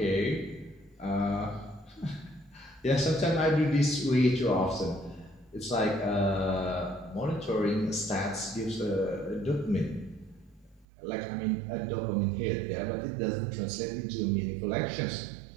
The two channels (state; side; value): drops out; left; at 10.9 s